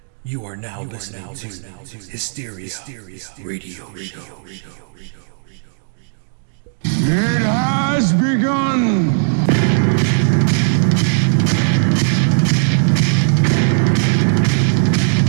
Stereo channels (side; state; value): left; silent; digital silence